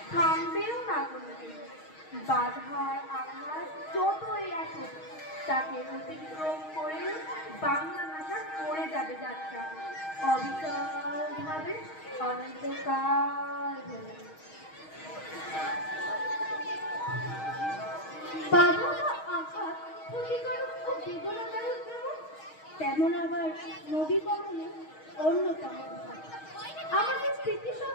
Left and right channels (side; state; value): right; late; 6.4 ms